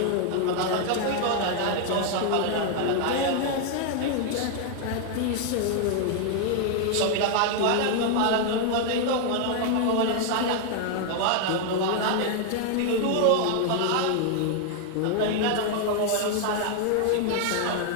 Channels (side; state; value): both; different; correlation 0.00